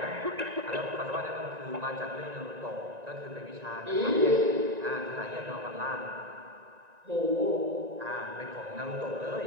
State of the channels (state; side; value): late; left; 1.9 ms